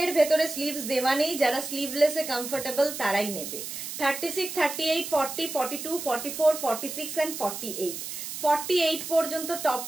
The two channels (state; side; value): noise; right; hiss, 7 dB below the sound